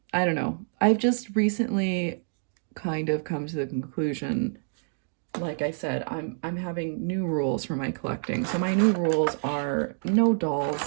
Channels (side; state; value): left; silent; digital silence